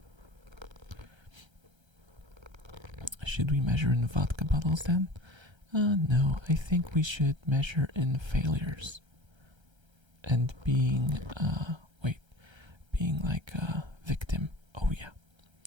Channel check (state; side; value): late; left; 1.3 ms